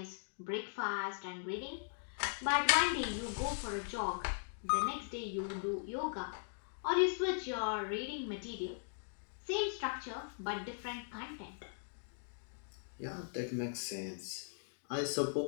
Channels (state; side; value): silent; right; digital silence